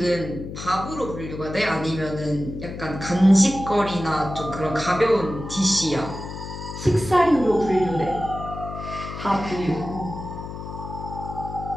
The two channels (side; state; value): left; noise; hum, 9 dB below the sound